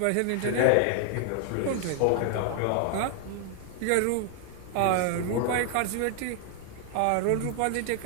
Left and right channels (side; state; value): both; different; correlation 0.00